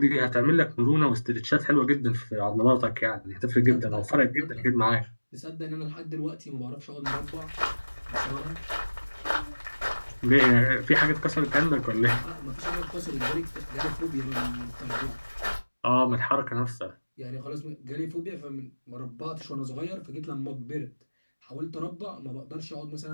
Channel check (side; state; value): both; inverted; correlation -1.00